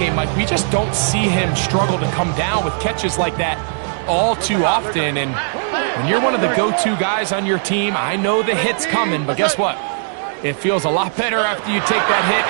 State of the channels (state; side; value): silent; left; digital silence